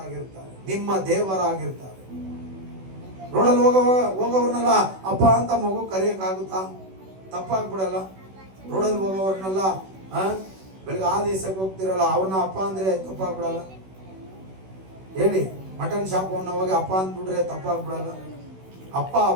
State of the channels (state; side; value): late; left; 16 ms